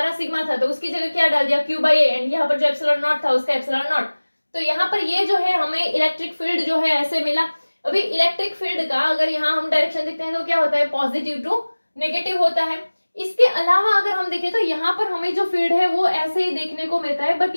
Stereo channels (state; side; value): inverted; both; correlation -1.00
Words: सिग्मा था तो उसकी जगह क्या डाल दिया क्यू बाई ए एंड यहाँ पर जो एप्सिलॉन नॉट था उसका एप्सिलॉन नॉट। तो यहाँ पर ये जो है हमें इलेक्ट्रिक फील्ड जो है ऐसे मिला। अभी इलेक्ट्रिक फील्ड का अगर यहाँ हम डायरेक्शन देखते हैं तो क्या होता है पॉजिटिव टू नेगेटिव होता है। इसके अलावा अगर हम देखें तो यहाँ पर हमें जो फील्ड है वो ऐसे ही देखने को मिलता है, बट